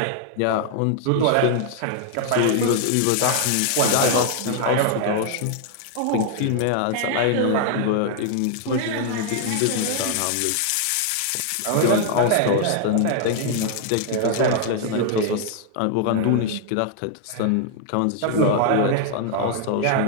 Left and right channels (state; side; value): different; both; correlation 0.00